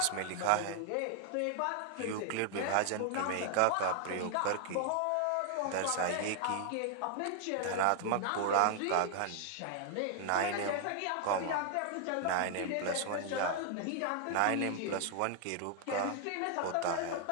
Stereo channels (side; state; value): both; different; correlation 0.00